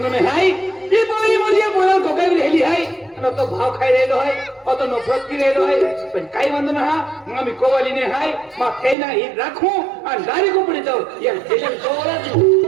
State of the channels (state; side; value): drops out; left; at 9.0 s